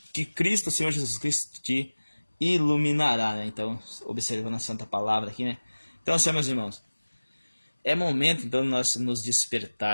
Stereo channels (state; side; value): inverted; both; correlation -1.00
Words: que Cristo, Senhor Jesus Cristo, te iluminará, né? Então, observando a santa palavra aqui, né? Então, assim, meus irmãos, é momento, então, de nós nos